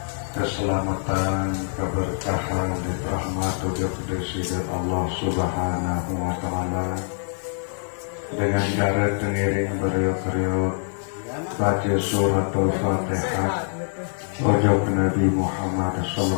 keselamatan, keberkahan, dan rahmat untuk Presiden Allah Subhanahu wa Ta'ala dengan cara pengiring beriuk-riuk baca suratul Fatihah ojok Nabi Muhammad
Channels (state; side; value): silent; right; digital silence